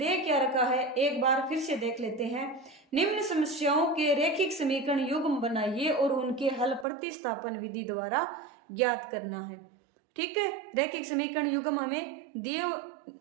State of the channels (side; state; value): left; drops out; at 6.9 s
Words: क्या रखा है, एक बार फिर से देख लेते हैं। निम्न समस्याओं के रैखिक समीकरण युग्म बनाइए और उनके हल प्रतिस्थापन विधि द्वारा ज्ञात करना है। ठीक है, रैखिक समीकरण युग्म हमें